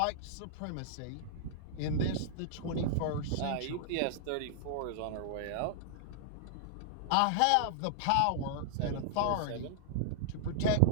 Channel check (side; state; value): both; different; correlation -0.01